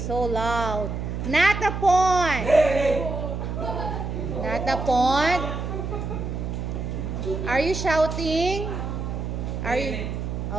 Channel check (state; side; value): noise; right; hum, 4 dB below the sound